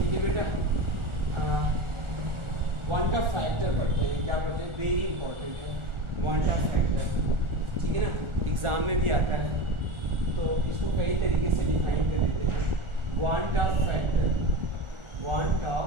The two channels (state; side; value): late; left; 1.4 ms